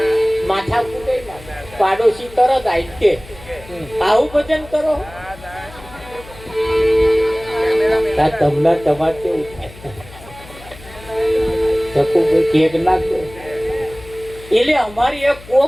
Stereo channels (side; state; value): left; noise; hum, 19 dB below the sound